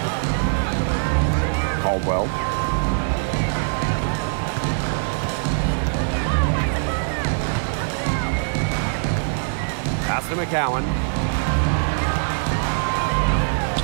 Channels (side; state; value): left; silent; digital silence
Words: Caldwell. Pass to McCowan.